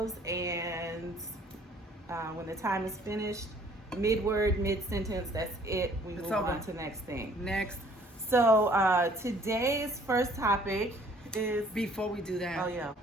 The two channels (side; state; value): both; normal; correlation 0.58